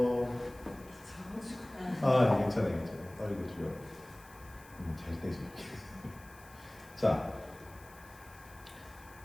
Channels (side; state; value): left; noise; hiss, 23 dB below the sound